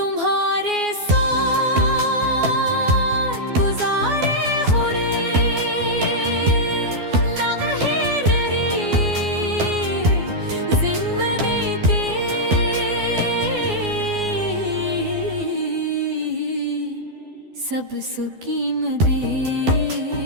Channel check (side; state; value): left; late; 12 ms